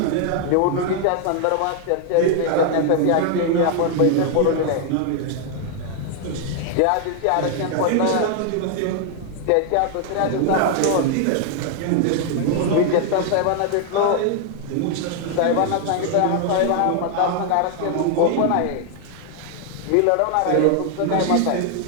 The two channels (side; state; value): both; different; correlation 0.00